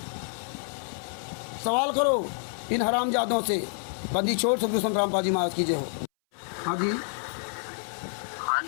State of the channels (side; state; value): right; silent; 59 dB below the other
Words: सवाल करो इन हरामजादों से। बंदी छोड़ सदगुरु संत रामपाल महाराज की जय हो। हाँ जी, हाँ